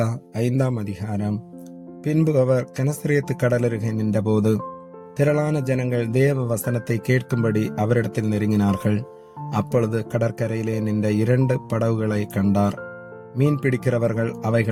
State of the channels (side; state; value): both; identical; correlation 1.00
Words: 5ஆம் அதிகாரம். பின்பு அவர் கெனசரேத்து கடலருகே நின்றபோது திரளான ஜனங்கள் தேவ வசனத்தை கேட்கும்படி அவரிடத்தில் நெருங்கினார்கள். அப்பொழுது கடற்கரையிலே நின்ற 2 படகுகளை கண்டார். மீன் பிடிக்கிறவர்கள்